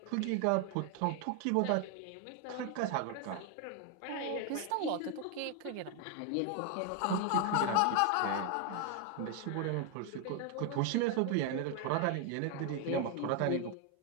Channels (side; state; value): both; different; correlation 0.01